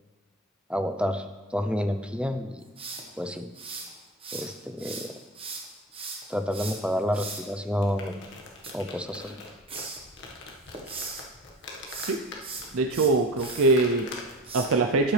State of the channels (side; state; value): both; normal; correlation 0.33